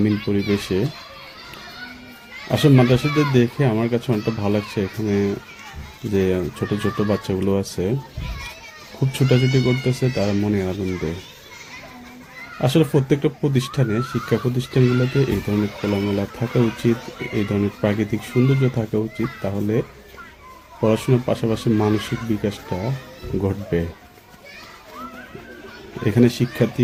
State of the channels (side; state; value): both; identical; correlation 1.00